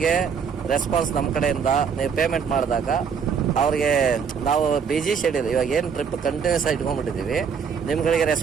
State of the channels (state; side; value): quieter; left; 6.6 dB